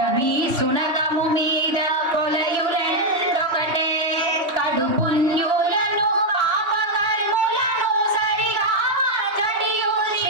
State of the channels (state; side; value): late; left; 3.1 ms